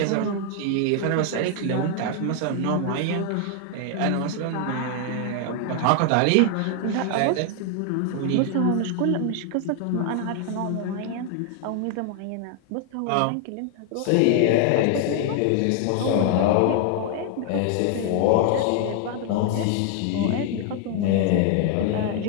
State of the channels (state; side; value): different; both; correlation 0.00